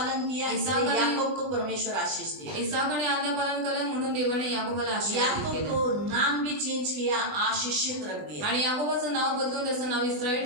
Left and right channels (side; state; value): left; late; 20 ms